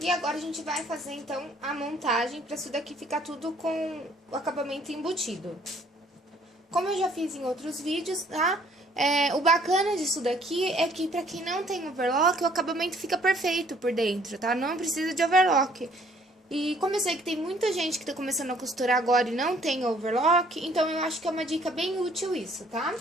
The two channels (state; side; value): normal; both; correlation 0.60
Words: agora a gente vai fazer, então, a montagem pra isso daqui ficar tudo com o acabamento embutido. Como eu já fiz em outros vídeos, tá? O bacana disso daqui é que pra quem não tem overlock, o acabamento fica perfeito por dentro, tá? Não precisa de overlock. E como eu sei que tem muita gente que tá começando a costurar agora e não tem overlock, então eu acho que é uma dica bem útil isso, tá?